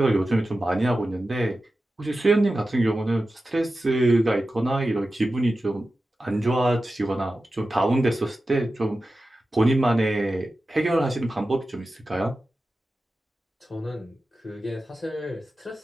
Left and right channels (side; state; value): both; normal; correlation 0.93